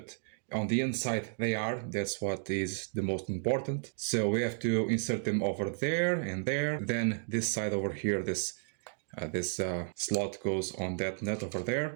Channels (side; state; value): left; silent; 56 dB below the other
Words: on the inside they are. That's what is the most important. So we have to insert them over there and there. Then this side over here, this slot goes on that nut over